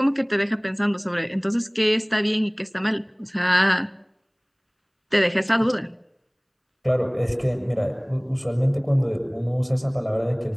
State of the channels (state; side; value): identical; both; correlation 1.00